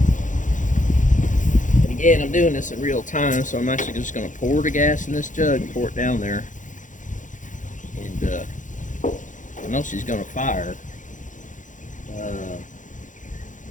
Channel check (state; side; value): late; right; 0.37 ms